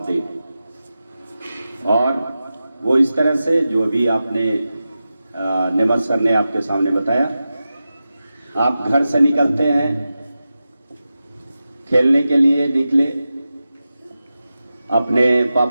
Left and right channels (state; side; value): inverted; both; correlation -0.93